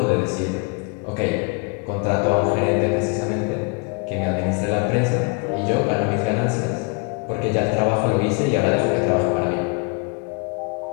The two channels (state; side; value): quieter; right; 31.3 dB